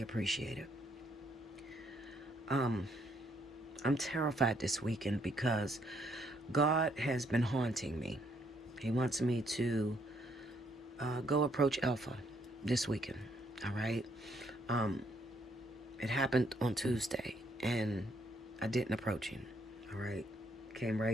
appreciate it. I'm terrified this weekend because God has been haunting me. He wants me to go approach Alpha this weekend, all right? It happened on Tuesday, and I didn't approach him, all right? Came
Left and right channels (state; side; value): normal; both; correlation 0.70